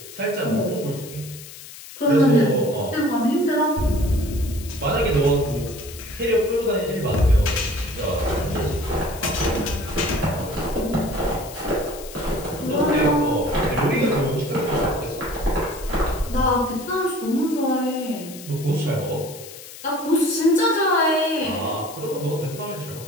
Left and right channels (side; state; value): left; noise; hiss, 15 dB below the sound